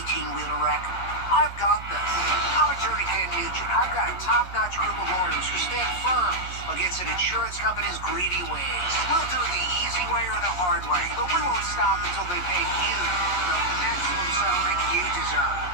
wreck? I've got this. I'm attorney Ken Nugent. I've got a top-notch group of lawyers who stand firm against an insurance company's greedy ways. We'll do it the easy way or the hard way, but we won't stop until they pay you the maximum settlement you deserve.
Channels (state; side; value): late; right; 11 ms